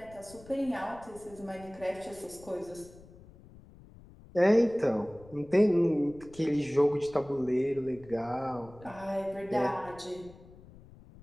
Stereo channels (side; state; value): left; noise; rumble, 21 dB below the sound